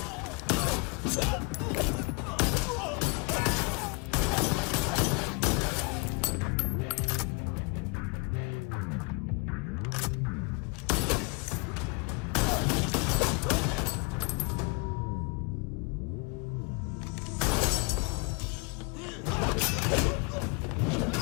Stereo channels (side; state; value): right; quieter; 31.3 dB